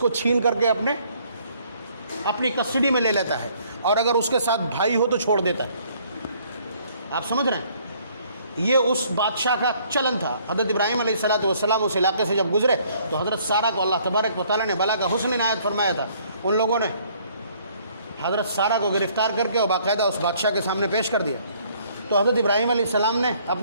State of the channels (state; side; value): inverted; both; correlation -0.62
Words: چھین کر کے اپنی کسٹڈی میں لے لیتا ہے، اور اگر اس کے ساتھ بھائی ہو تو چھوڑ دیتا ہے. آپ سمجھ رہے ہیں؟ یہ اس بادشاہ کا چلن تھا. حضرت ابراہیم علیہ السلام اس علاقے سے جب گزرے تو حضرت سارہ کو اللہ تبارک و تعالیٰ نے بلا کا حسن عنایت فرمایا تھا. ان لوگوں نے حضرت سارہ کو گرفتار کر کے اور باقاعدہ اس بادشاہ کے سامنے پیش کر دیا. تو حضرت ابراہیم علیہ السلام نے